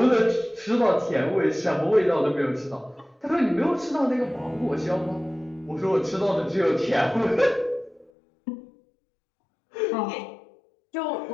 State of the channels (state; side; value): drops out; right; at 8.1 s